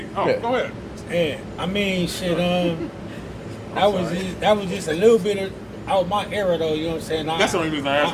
Oh, Yeah. go ahead. Yeah, I mean, shit. That was just a little bit of out my era, though. You know what I'm saying? That's the only reason I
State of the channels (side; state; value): both; identical; correlation 1.00